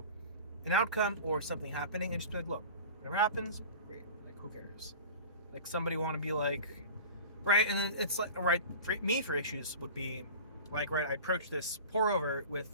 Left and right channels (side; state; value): both; inverted; correlation -0.36